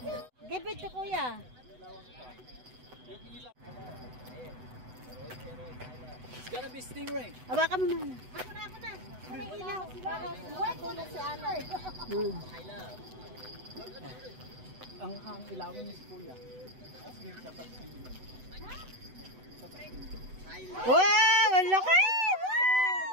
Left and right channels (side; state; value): left; late; 8.0 ms